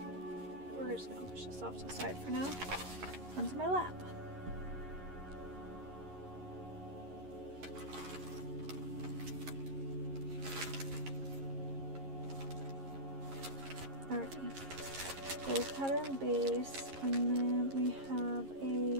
We're just gonna push this off to the side for now, onto my lap. Alrighty, gold patterned base, and then we have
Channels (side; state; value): left; late; 11 ms